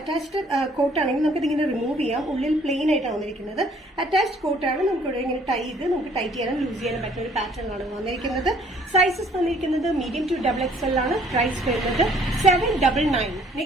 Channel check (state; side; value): normal; both; correlation 0.60